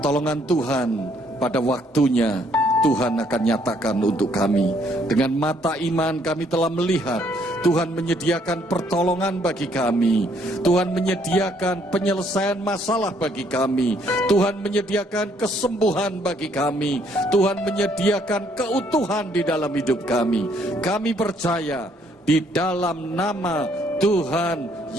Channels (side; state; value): both; normal; correlation 0.67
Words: Tuhan pada waktunya Tuhan akan nyatakan untuk kami. Dengan mata iman kami telah melihat Tuhan menyediakan pertolongan bagi kami. Tuhan menyediakan penyelesaian masalah bagi kami. Tuhan menyediakan kesembuhan bagi kami. Tuhan menyediakan keutuhan di dalam hidup kami. Kami percaya di dalam nama Tuhan